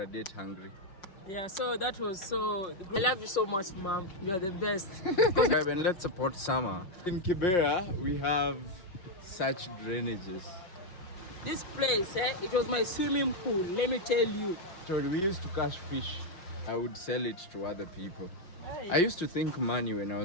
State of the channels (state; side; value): late; right; 5.6 ms